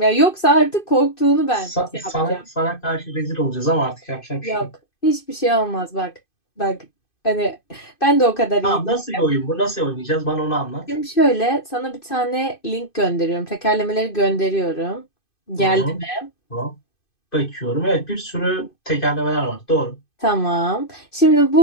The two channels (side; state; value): right; late; 2.5 ms